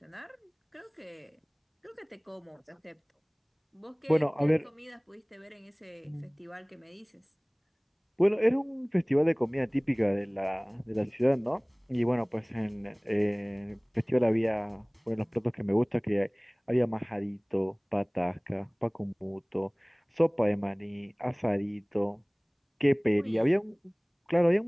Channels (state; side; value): identical; both; correlation 1.00